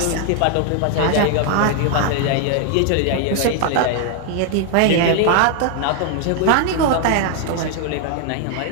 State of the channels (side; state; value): both; different; correlation 0.00